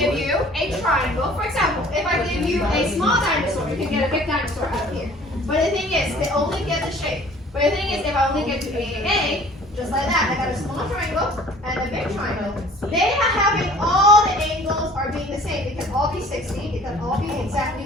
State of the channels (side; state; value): both; normal; correlation 0.50